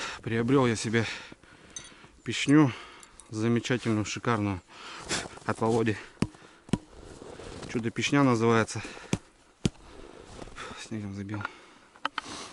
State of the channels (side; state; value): both; identical; correlation 1.00